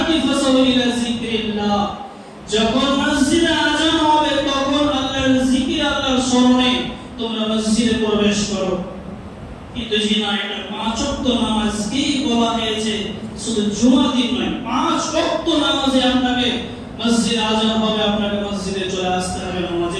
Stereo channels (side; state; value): both; identical; correlation 1.00